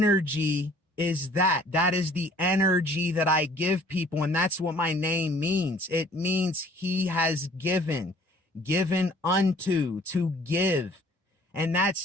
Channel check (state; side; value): normal; both; correlation 0.54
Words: is that. That is the energy that I give people. And that's what my name means. It means he has given unto, to give. And